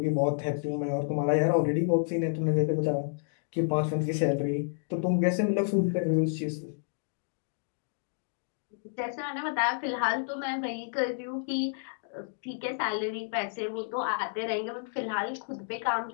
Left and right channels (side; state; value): right; silent; digital silence